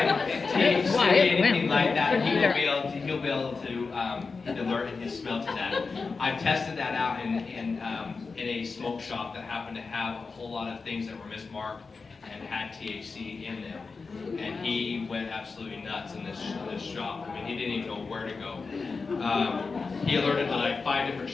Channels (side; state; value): right; quieter; 4.5 dB